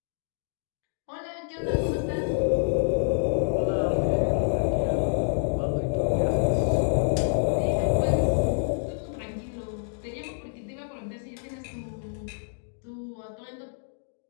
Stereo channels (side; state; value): right; silent; digital silence